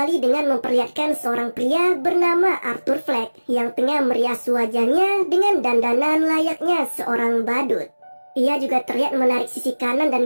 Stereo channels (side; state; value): both; inverted; correlation -1.00